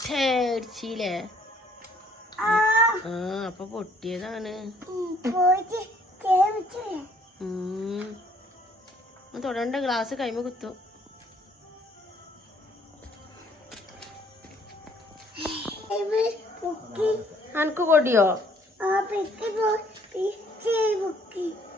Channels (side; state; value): both; normal; correlation 0.62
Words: അപ്പൊ പൊട്ടിയതാണ്. തൊടണ്ട, ഗ്ലാസ് കൈമ കുത്തും. അനക്ക് കൊടിയോ?